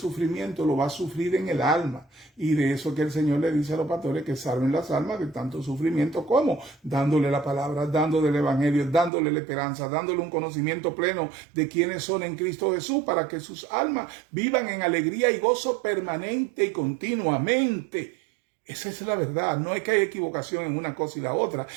lo va a sufrir en el alma. Y de eso que el Señor le dice a los pastores, que salven las almas de tanto sufrimiento. ¿Cómo? Dándole la palabra, dándole el evangelio, dándole la esperanza, dándole un conocimiento pleno de quiénes son en Cristo Jesús, para que sus almas vivan en alegría y gozo permanente y continuamente. Esa es la verdad. No es que haya equivocación en una cosa y la otra.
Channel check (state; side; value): drops out; left; at 9.1 s